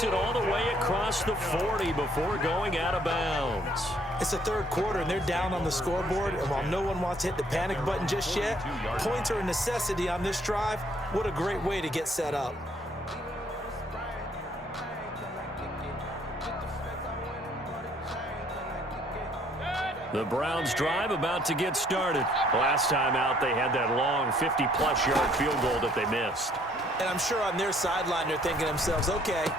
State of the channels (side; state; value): both; normal; correlation 0.64